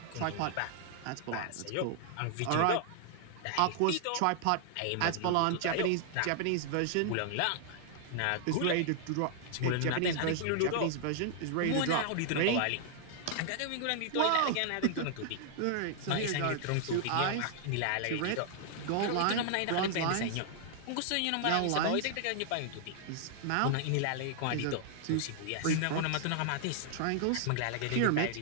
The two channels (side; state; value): both; different; correlation -0.01